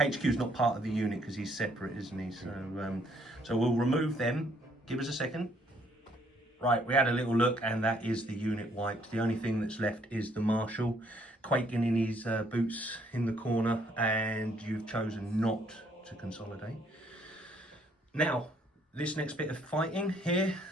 is not part of the unit because he's separate, isn't he? So, so we'll remove them. Give us a second. Right, we had a little look, and that is the unit wiped. The only thing that's left is the Marshal, quaking in his boots in the corner, and you've chosen not to consolidate. Now, this next bit of fighting here,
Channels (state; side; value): normal; both; correlation 0.67